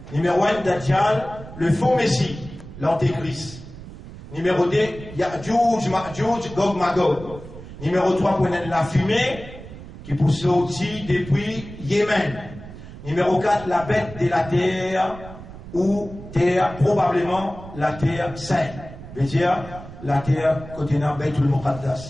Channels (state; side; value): noise; right; rumble, 15 dB below the sound